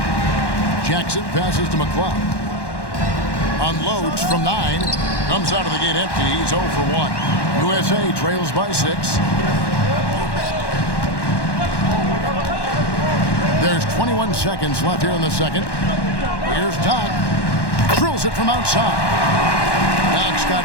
Jackson passes to McLeod. Unloads from 9. Comes out of the gate empty. He's 0 for 1. USA trails by 6. There's 21 seconds left here in the second. Here's Doc. Drills it from outside. Doc's got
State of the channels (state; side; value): late; right; 1.1 ms